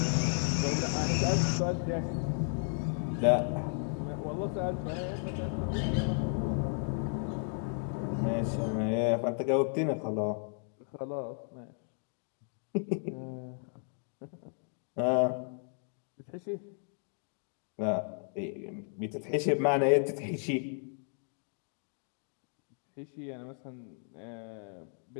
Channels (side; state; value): right; silent; 55 dB below the other